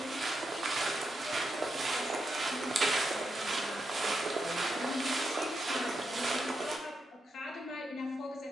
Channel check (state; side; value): normal; both; correlation 0.85